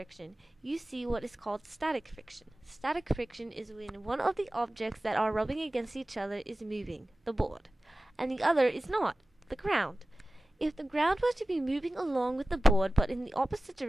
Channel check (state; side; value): normal; both; correlation 0.96